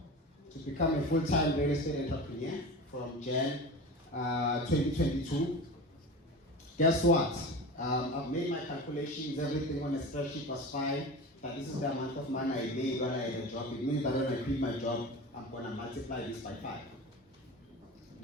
to become a full-time real estate entrepreneur from Jan 2022. Guess what? I've made my calculations, everything on a spreadsheet was fine, that this is the amount of money I made when I had a job. It means that when I quit my job, I'm going to multiply this by 5.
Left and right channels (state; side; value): normal; both; correlation 0.31